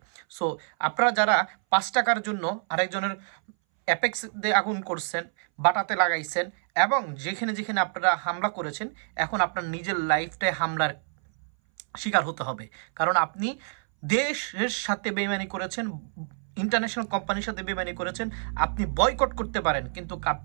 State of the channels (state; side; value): silent; left; 60 dB below the other